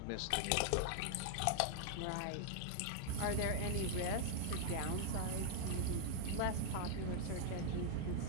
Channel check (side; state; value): both; different; correlation 0.00